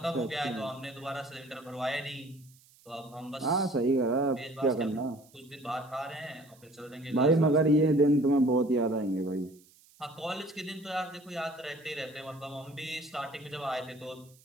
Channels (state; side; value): noise; right; hiss, 28 dB below the sound